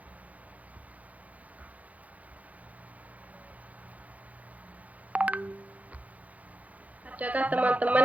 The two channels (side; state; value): left; late; 0.072 ms